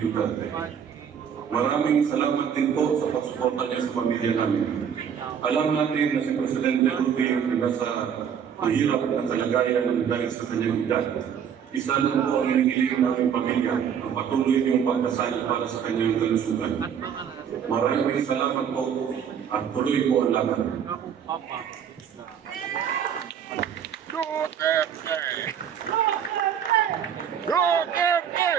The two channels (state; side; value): quieter; left; 8.1 dB